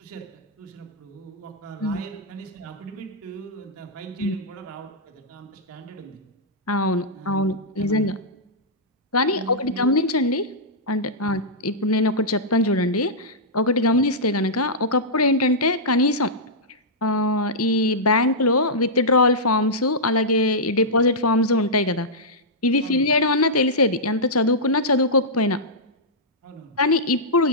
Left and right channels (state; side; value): normal; both; correlation -0.11